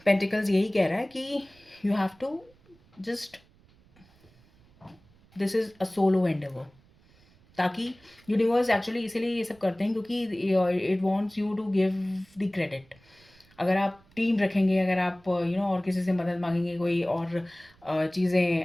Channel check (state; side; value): noise; right; rumble, 29 dB below the sound